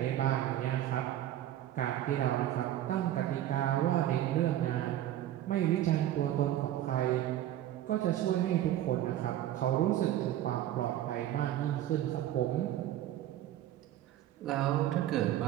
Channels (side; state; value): left; quieter; 12.7 dB